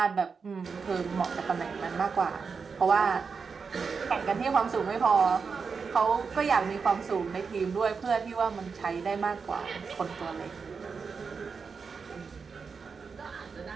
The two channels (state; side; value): quieter; left; 5.4 dB